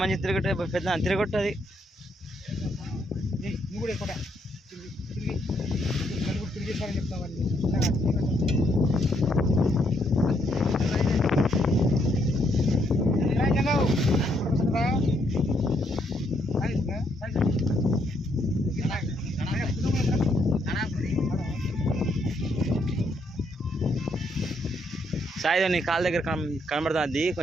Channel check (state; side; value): normal; both; correlation 0.74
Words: తిరగొట్టు పెద్ద తిరగొట్టు అది నువ్వు కూడా ఎక్కువ తిరిగి నలుగురు తిరిగేసారని చెప్తావు వాళ్ళు సాయి నీ కాళ్ళ దగ్గర కనబడుతుంది